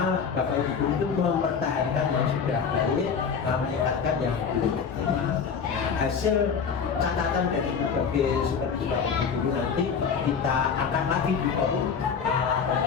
Bapak Ibu itu mempertahankan yang sudah baik, meningkatkan yang belum optimal. Hasil catatan dari berbagai supervisi Bapak Ibu nanti kita akan lagi di forum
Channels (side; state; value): right; quieter; 6.4 dB